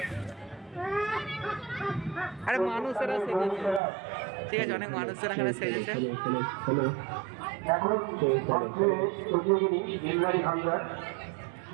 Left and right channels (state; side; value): drops out; left; at 3.8 s